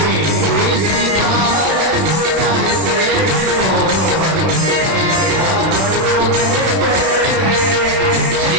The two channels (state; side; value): late; left; 32 ms